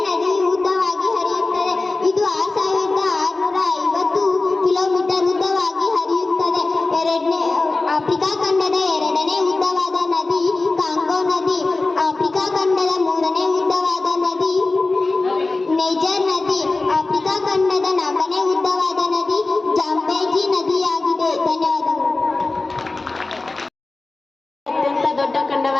ನದಿ ಉದ್ದವಾಗಿ ಹರಿಯುತ್ತದೆ. ಇದು 6650 ಕಿಲೋಮೀಟರ್ ಉದ್ದವಾಗಿ ಹರಿಯುತ್ತದೆ. ಆಫ್ರಿಕಾ ಖಂಡದ ಎರಡನೇ ಉದ್ದವಾದ ನದಿ ಕಾಂಗೋ ನದಿ. ಆಫ್ರಿಕಾ ಖಂಡದ ಮೂರನೇ ಉದ್ದವಾದ ನದಿ ನೈಜರ್ ನದಿ. ಆಫ್ರಿಕಾ ಖಂಡದ ನಾಲ್ಕನೇ ಉದ್ದವಾದ ನದಿ ಜಾಂಬೇಜಿ ನದಿಯಾಗಿದೆ. ಧನ್ಯವಾದಗಳು. ಅತ್ಯಂತ ದೊಡ್ಡ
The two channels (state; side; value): quieter; right; 3.4 dB